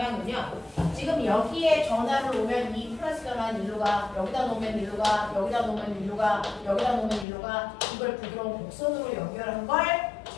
지금 여기에 전화를 놓으면 이 플러스 전화는 일로 가, 여기다 놓으면 일로 가, 여기다 놓으면 일로 가, 여기다 놓으면 일로 가. 이걸 부드러운 곡선으로 연결한 걸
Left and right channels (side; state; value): right; drops out; at 7.2 s